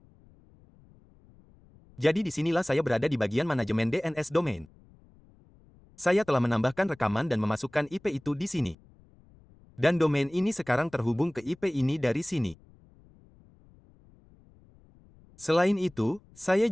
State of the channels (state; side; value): noise; left; rumble, 28 dB below the sound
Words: Jadi disinilah saya berada di bagian manajemen DNS domain. Saya telah menambahkan rekaman dan memasukkan IP itu di sini. Dan domain ini sekarang terhubung ke IP ini dari sini. Selain itu, saya